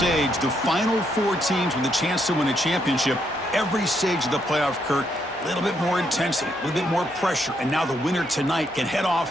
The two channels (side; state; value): both; normal; correlation 0.76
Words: the final 4 teams with a chance to win a championship. Every stage of the playoff, Kirk, a little bit more intensity, a little bit more pressure, and now the winner tonight can head